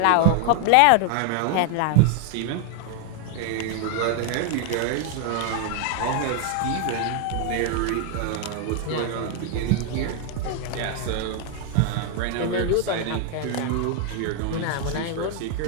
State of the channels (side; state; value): both; different; correlation 0.00